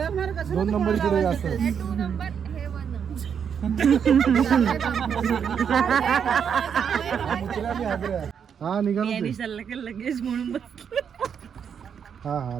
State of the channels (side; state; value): left; quieter; 7.5 dB